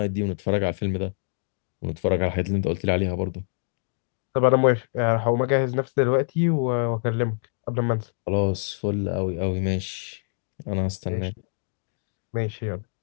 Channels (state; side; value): silent; right; digital silence